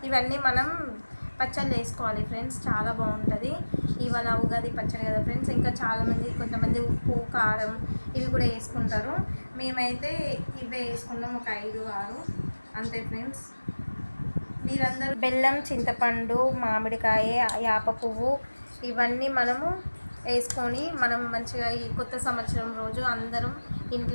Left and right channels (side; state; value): both; inverted; correlation -1.00